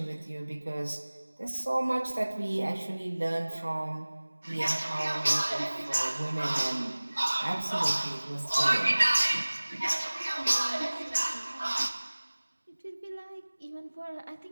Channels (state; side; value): inverted; both; correlation -1.00